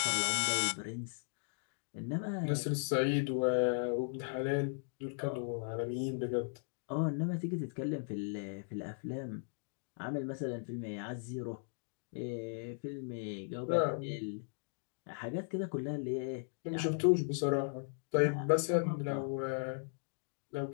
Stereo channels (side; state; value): right; silent; digital silence